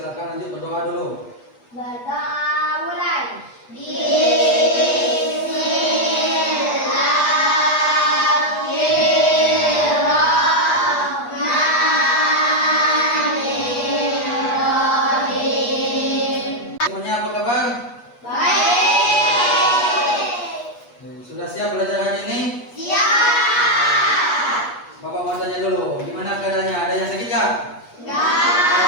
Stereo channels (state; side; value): late; right; 8.3 ms